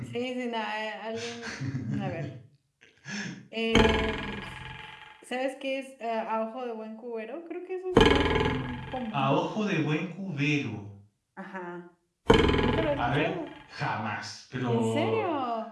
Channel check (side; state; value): both; identical; correlation 1.00